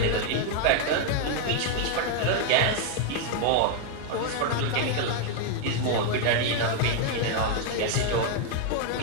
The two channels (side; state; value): both; different; correlation 0.00